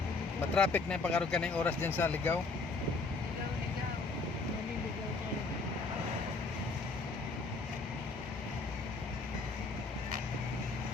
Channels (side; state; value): right; quieter; 3.7 dB